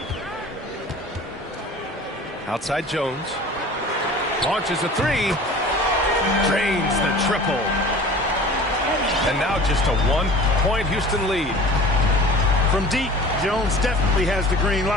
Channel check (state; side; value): normal; both; correlation 0.43